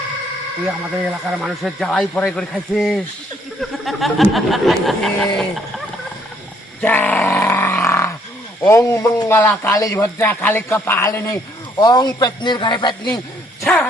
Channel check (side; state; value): both; normal; correlation 0.67